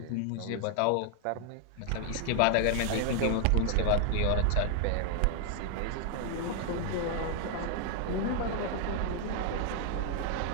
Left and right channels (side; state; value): both; different; correlation 0.00